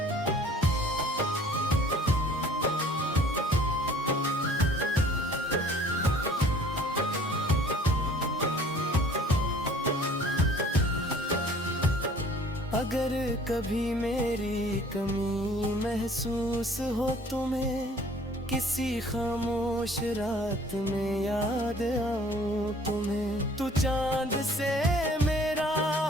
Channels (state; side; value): normal; both; correlation 0.53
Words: अगर कभी मेरी कमी महसूस हो तुम्हें, किसी खामोश रात में याद आऊं तुम्हें, तू चांद से मेरा